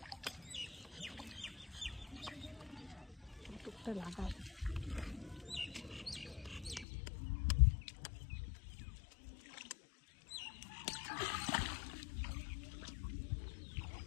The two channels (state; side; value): drops out; right; at 6.9 s